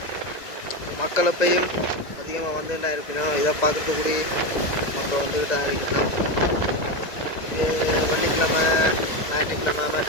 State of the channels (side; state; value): right; late; 1.9 ms